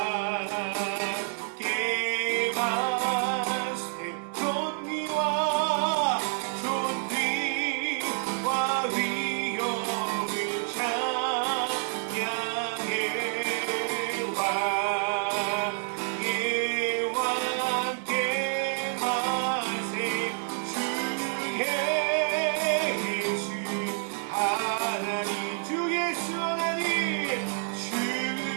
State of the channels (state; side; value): silent; left; 59 dB below the other